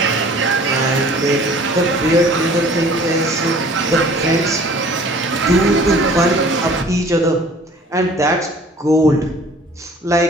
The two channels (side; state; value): both; normal; correlation 0.50